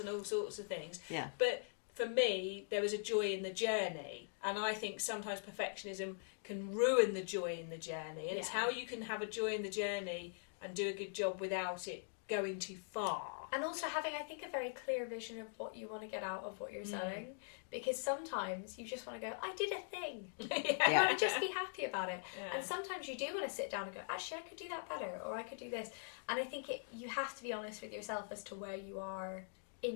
and all sorts of things. Yeah. But for me, there was a joy in the journey, and I think sometimes perfectionism can ruin the joy in the journey, and it's how you can have a joy in the journey and do a good job without it going too far. And also having, I think, a very clear vision of what you want to get out of what you're sewing, because sometimes you just want to go, I did a thing. You want to just be happy about it. Yeah. And sometimes you do want to sit down and go, actually, I could do that better, or I could do this. And I think you have to be honest with yourself as to where you are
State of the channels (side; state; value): right; silent; digital silence